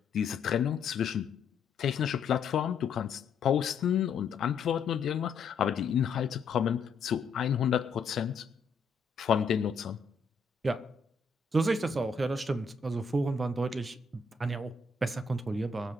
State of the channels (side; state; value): right; quieter; 4.5 dB